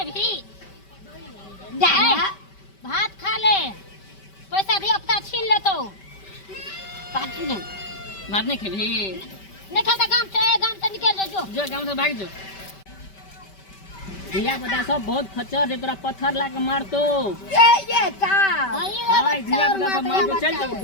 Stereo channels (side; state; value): right; late; 5.2 ms